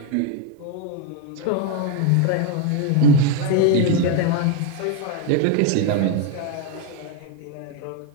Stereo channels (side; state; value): both; different; correlation 0.01